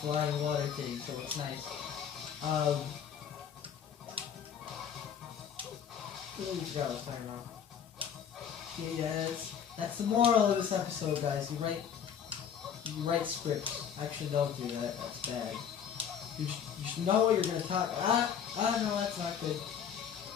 flying water thing, so it's nice. What I was talking about? Yeah, that's the moral of this episode, guys. You write scripts. Actually, don't do that. That's bad. You should know what you're gonna talk. No, that's not good.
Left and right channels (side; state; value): right; quieter; 8.1 dB